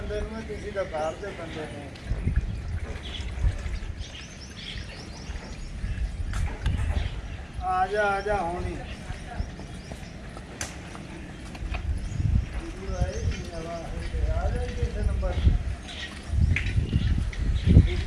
ਨੂੰ ਤੁਸੀਂ ਤਾਂ ਬਾਹਰ ਦੇ ਬੰਦੇ ਨੇ। ਆ ਜਾ ਹੁਣੀ ਆ ਜਾ ਕਿਸੇ ਨੰਬਰ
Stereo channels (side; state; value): both; identical; correlation 1.00